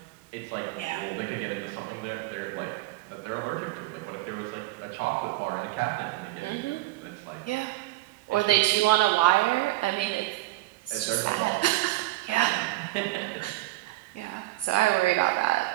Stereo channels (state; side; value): quieter; left; 18.3 dB